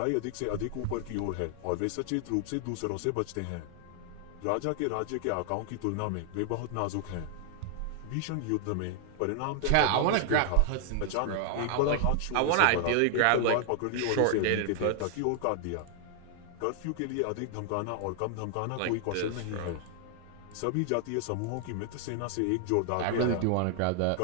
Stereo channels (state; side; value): different; both; correlation 0.00